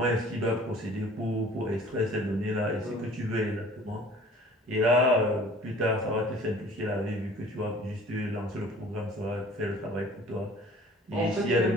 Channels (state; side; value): normal; both; correlation 0.49